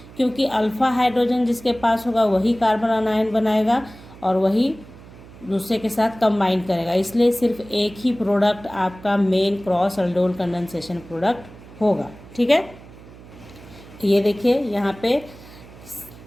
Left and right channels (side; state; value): right; noise; hum, 20 dB below the sound